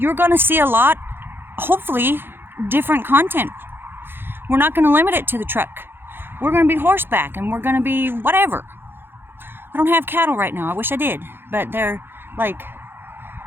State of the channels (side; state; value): left; late; 0.10 ms